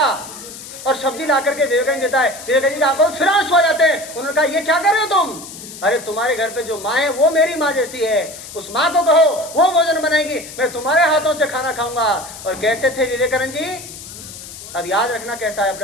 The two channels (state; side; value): noise; left; hiss, 14 dB below the sound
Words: और सब्जी ला करके विवेकानंद देता है। विवेकानंद जी की आंखों में फिर आंसू आ जाते हैं। उन्होंने कहा ये क्या कर रहे हो तुम? अरे तुम्हारे घर पे जो माँ है वो मेरी माँ जैसी है, उस माँ को कहो वो भोजन बनाएगी, मैं तुम्हारे हाथों से खाना खाऊंगा। और कैसे थे विवेकानंद जी? अब याद रखना कैसा है